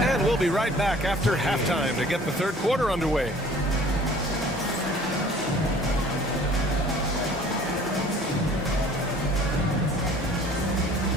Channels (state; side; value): normal; both; correlation 0.50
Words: we'll be right back after halftime to get the third quarter underway.